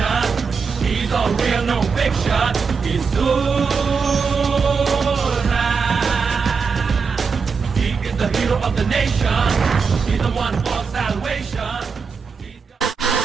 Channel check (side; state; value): left; quieter; 5.4 dB